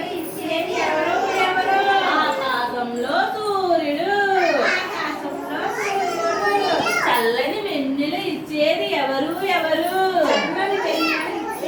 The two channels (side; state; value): both; identical; correlation 1.00